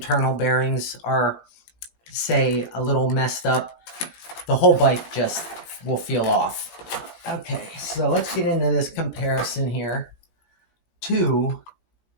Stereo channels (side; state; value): right; late; 17 ms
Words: bearings are, say, a little messed up, the whole bike just will feel off. Okay, so let's get into this comparison here to